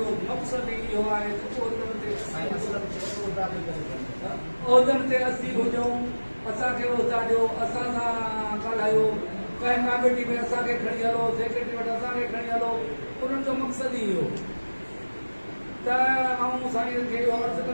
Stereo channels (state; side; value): inverted; both; correlation -1.00